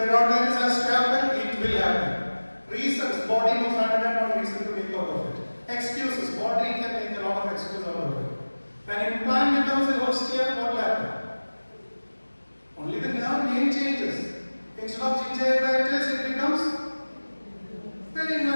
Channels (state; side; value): inverted; both; correlation -1.00